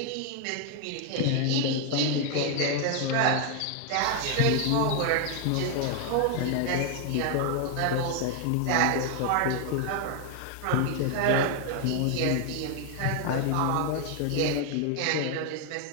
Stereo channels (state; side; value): different; both; correlation 0.00